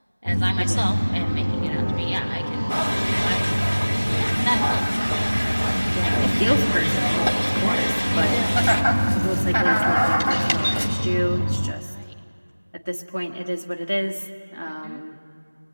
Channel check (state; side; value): inverted; both; correlation -1.00